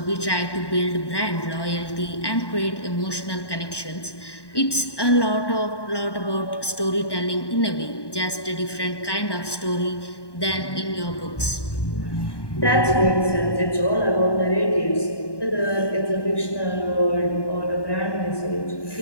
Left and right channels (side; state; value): right; late; 1.1 ms